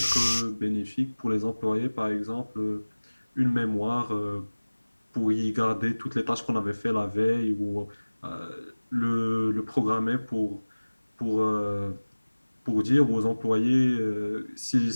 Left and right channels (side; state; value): both; inverted; correlation -1.00